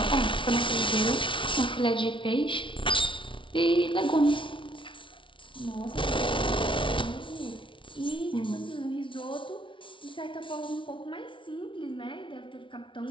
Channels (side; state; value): right; late; 0.25 ms